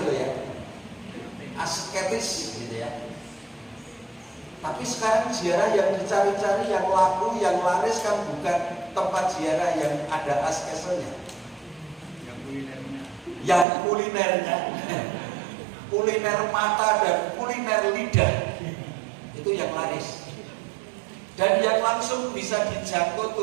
loh ya. Asketis gitu ya. Tapi sekarang ziarah yang dicari-cari, yang laku, yang laris kan bukan tempat ziarah yang ada askesenya. Yang kulinernya. Kuliner mata dan kuliner lidah. Itu yang laris. Dan yang langsung bisa dijangkau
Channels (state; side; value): drops out; left; at 13.7 s